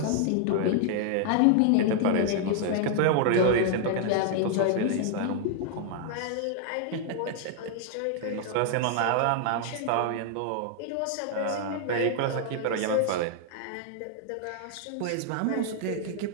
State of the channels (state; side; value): different; both; correlation 0.00